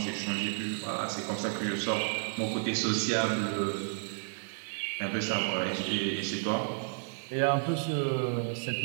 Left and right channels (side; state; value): left; silent; digital silence